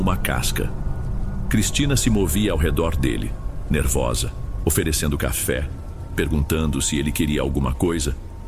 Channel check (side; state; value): both; identical; correlation 1.00